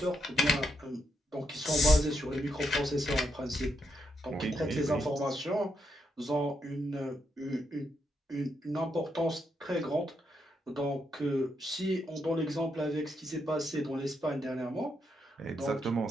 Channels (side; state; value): both; normal; correlation 0.80